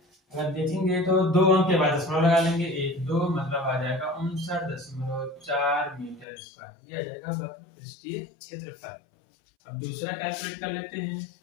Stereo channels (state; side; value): drops out; right; at 6.2 s